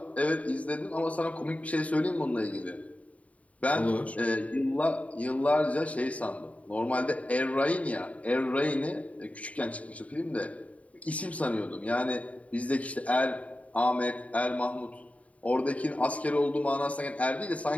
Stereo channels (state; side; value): late; right; 0.068 ms